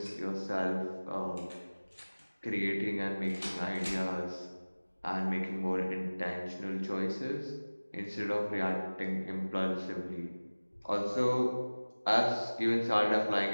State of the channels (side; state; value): both; inverted; correlation -1.00